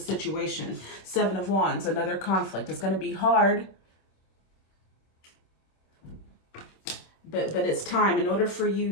Seven of Wands, another conflict. It's going to be hard. But it's time in order for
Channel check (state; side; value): late; right; 26 ms